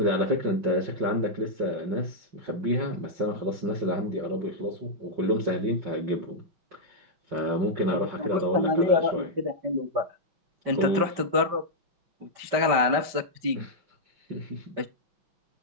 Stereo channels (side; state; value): left; late; 5.2 ms